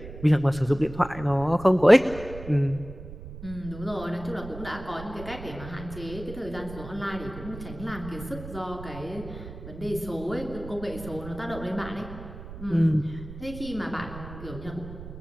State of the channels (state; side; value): noise; right; rumble, 12 dB below the sound